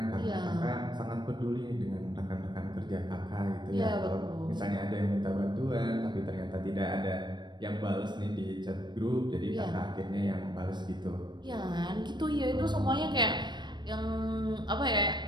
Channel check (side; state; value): left; late; 0.22 ms